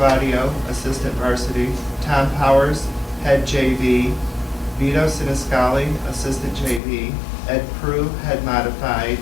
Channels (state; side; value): drops out; right; at 6.8 s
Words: assistant varsity, Tom Powers, head JV, Vito Siniscali, assistant JV, Ed Prue, head modified,